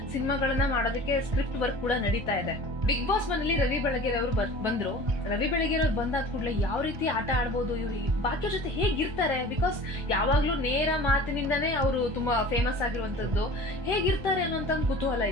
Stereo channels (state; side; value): late; left; 1.2 ms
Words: ಸಿನಿಮಾಗಳನ್ನ ಮಾಡೋದಕ್ಕೆ ಸ್ಕ್ರಿಪ್ಟ್ ವರ್ಕ್ ಕೂಡ ನಡೀತಾ ಇದೆ. ಬಿಗ್ ಬಾಸ್ ಮನೇಲಿ ರವಿ ಬೆಳಗೆರೆ ಅವರು ಬಂದ್ರು. ರವಿ ಬೆಳಗೆರೆ ಅವ್ರು ಬಂದಾದ ಕೂಡಲೇ ಯಾವ ರೀತಿ ಆಟ ಆಡ್ಬೋದು, ಇವ್ರು ಬಾಕಿ ಜೊತೆ ಹೇಗಿರ್ತಾರೆ, ಬಿಕಾಸ್ ಯಾವಾಗ್ಲೂ ನೇರ ಮಾತಿನಿಂದನೇ ಅವರು ತುಂಬಾ ಫೇಮಸ್ ಆಗಿರುವಂತದ್ದು, ಹೇಗಿರ್ತಾರೆ ಅನ್ನೋಂತ ಒಂದು ಕುತೂಹಲ